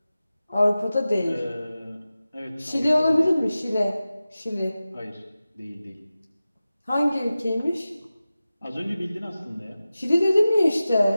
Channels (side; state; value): both; inverted; correlation -0.95